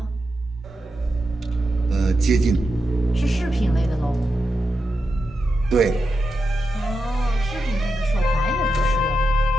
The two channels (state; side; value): normal; both; correlation 0.87